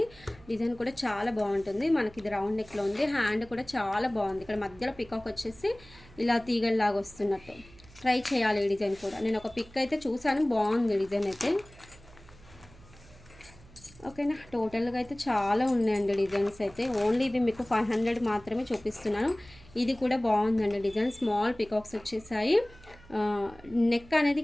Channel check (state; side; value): noise; right; hum, 23 dB below the sound